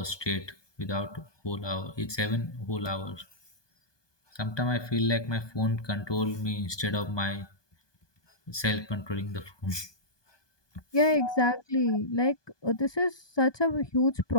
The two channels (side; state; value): right; late; 1.2 ms